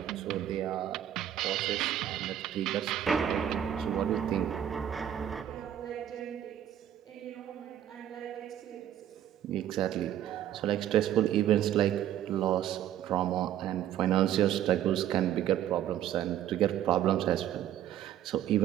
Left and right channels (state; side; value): quieter; left; 11.1 dB